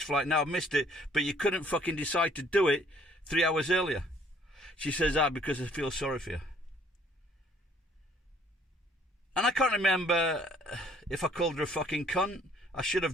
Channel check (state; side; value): normal; both; correlation 0.61